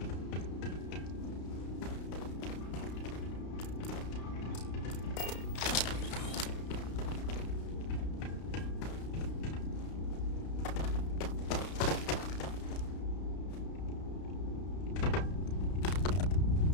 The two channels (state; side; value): late; right; 32 ms